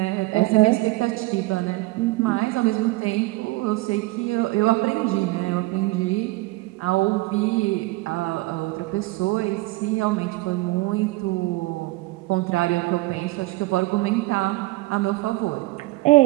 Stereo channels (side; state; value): left; quieter; 21.0 dB